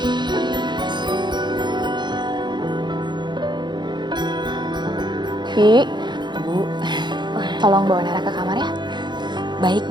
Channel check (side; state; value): left; late; 0.21 ms